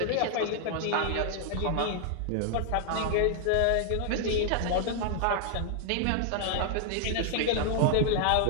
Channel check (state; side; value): different; both; correlation 0.00